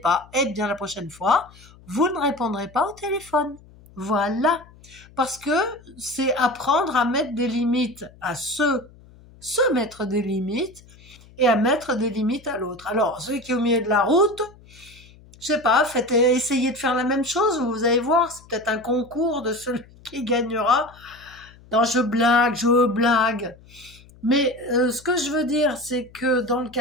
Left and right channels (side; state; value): left; noise; hum, 24 dB below the sound